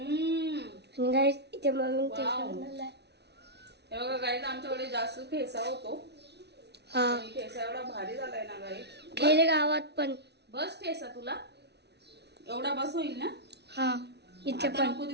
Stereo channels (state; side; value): late; left; 0.49 ms